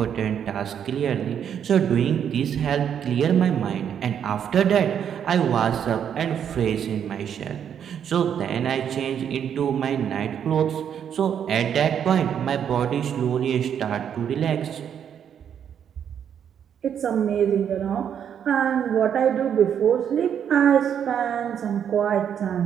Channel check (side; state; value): left; quieter; 8.6 dB